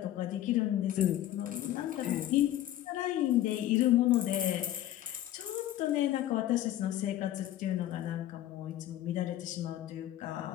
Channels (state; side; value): quieter; right; 13.1 dB